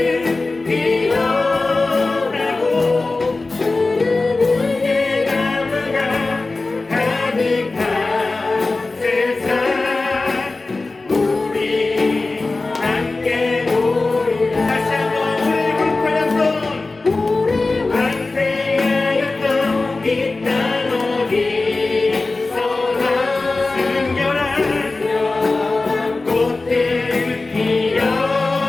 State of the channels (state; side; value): quieter; right; 3.4 dB